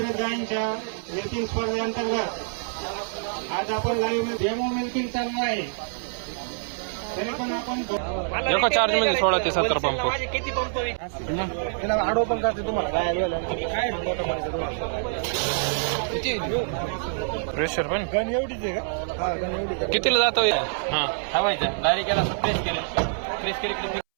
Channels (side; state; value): left; silent; 61 dB below the other